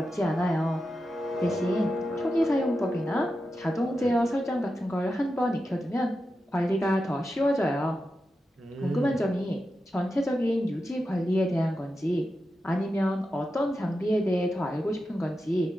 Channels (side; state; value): both; normal; correlation 0.90